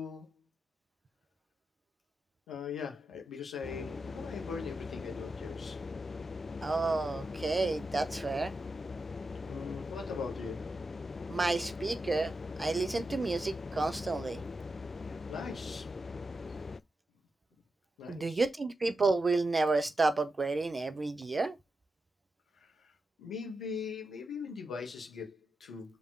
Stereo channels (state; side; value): normal; both; correlation 0.88